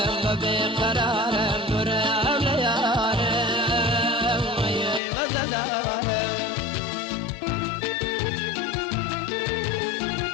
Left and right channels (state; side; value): drops out; right; at 5.0 s